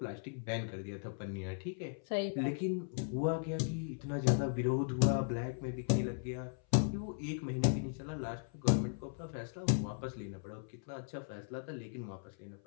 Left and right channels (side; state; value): right; silent; 53 dB below the other